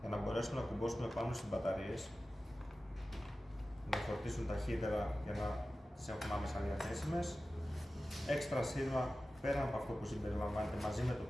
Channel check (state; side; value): normal; both; correlation 0.95